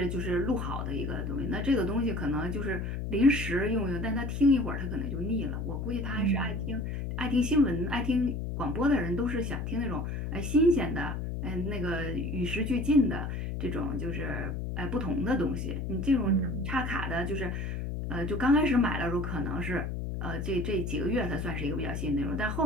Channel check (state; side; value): noise; left; hum, 3 dB below the sound